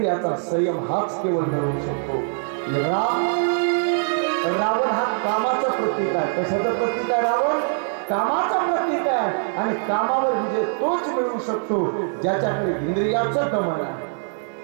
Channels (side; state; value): left; silent; digital silence